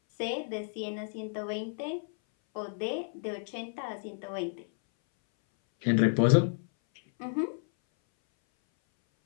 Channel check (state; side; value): silent; right; 57 dB below the other